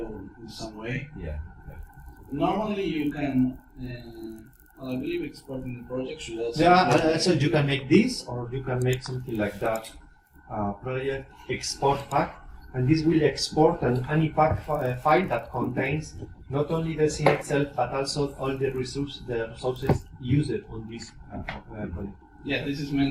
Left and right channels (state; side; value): identical; both; correlation 1.00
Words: in some way. Yeah. Okay. Normally you can. I believe exporting the project should also. Yeah, so you can make this, or you can make something like that. Project export pack, and this will export an ANIPAC file that contains not only the scene itself, but also all the resources used on this project. Yeah, this is